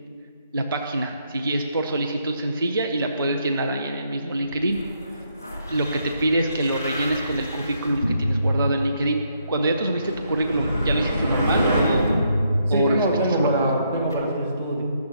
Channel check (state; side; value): inverted; both; correlation -0.75